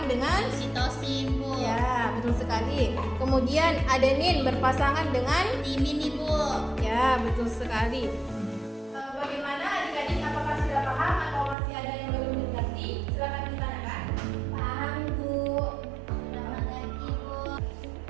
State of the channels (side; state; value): left; drops out; at 11.6 s